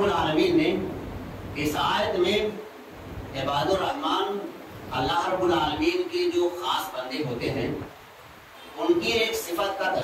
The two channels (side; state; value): both; identical; correlation 1.00